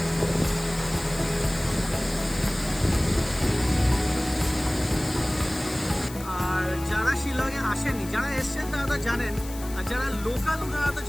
আর যারা শিলংয়ে আসেনি, যারা এসছেন তারা তো জানেন, আর যারা লোকাল ওনারা তো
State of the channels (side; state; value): left; noise; hiss, 15 dB below the sound